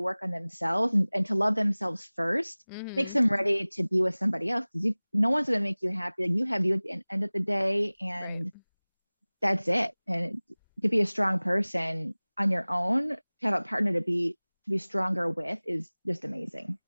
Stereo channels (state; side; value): inverted; both; correlation -1.00